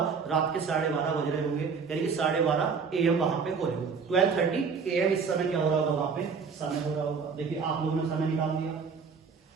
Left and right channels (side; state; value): left; quieter; 5.6 dB